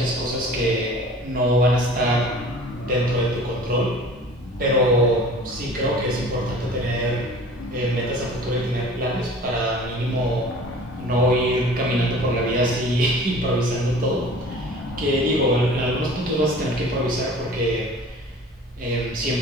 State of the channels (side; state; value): both; normal; correlation 0.44